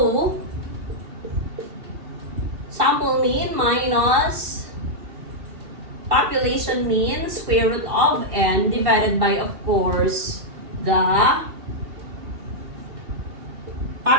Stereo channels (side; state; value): left; late; 2.7 ms